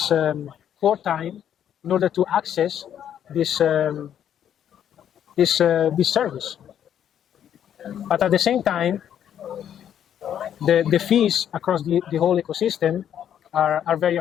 core time in order to access this service. But at the same time, the fees across the whole ecosystem are very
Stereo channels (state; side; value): quieter; right; 9.7 dB